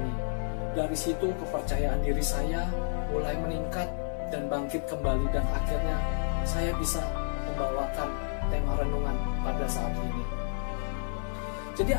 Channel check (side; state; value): right; silent; digital silence